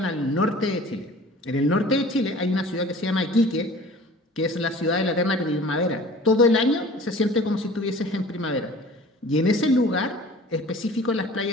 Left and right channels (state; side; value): normal; both; correlation 0.45